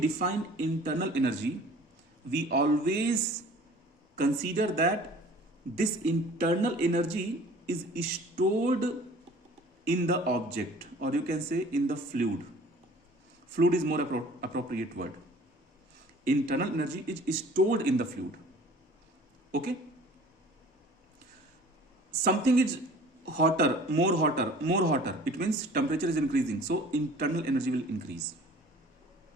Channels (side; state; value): both; normal; correlation 0.48